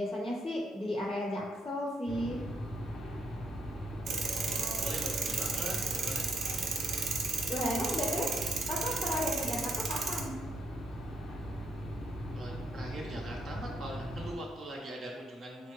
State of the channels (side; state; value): both; normal; correlation 0.76